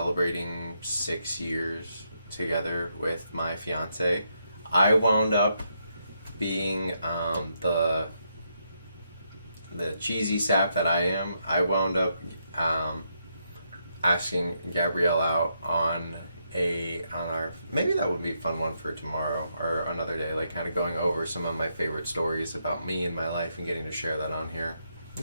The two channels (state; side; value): inverted; both; correlation -0.79